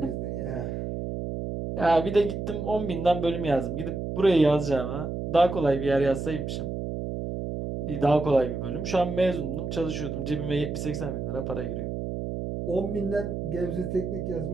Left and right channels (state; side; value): noise; right; hum, 4 dB below the sound